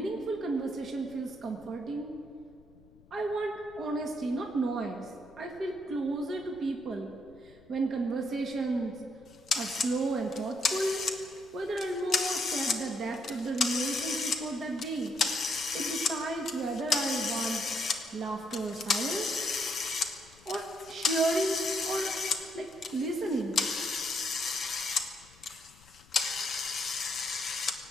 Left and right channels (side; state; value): left; noise; rumble, 25 dB below the sound